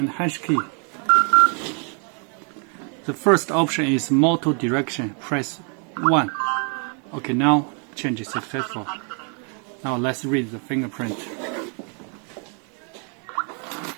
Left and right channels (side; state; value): left; quieter; 38.9 dB